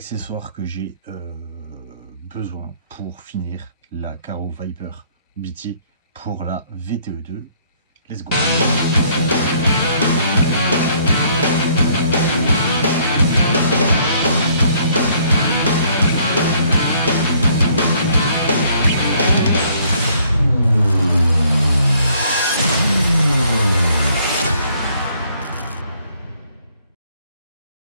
que j'ai besoin pour finir la Karo Viper BT pour la VTE2. Let's go.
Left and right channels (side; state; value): both; inverted; correlation -0.64